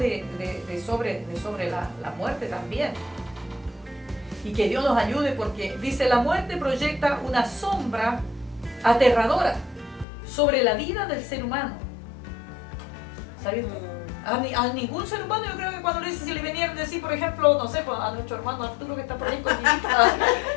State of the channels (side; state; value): right; drops out; at 10.1 s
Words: sobre la muerte también. Y que Dios nos ayude, porque dice, la muerte proyecta una sombra aterradora sobre la vida del ser humano. ¿Sabes? A ningún ser humano, yo creo que cuando le dice, si le venían a decir, por ejemplo, no sé, pues, a nuestro hermano Arturo que está por ahí con mi hija,